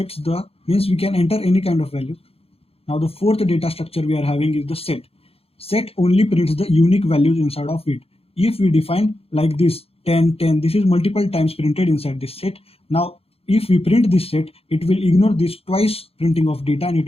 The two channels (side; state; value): right; late; 0.28 ms